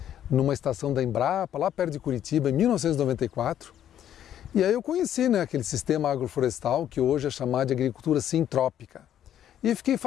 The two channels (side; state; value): right; quieter; 10.6 dB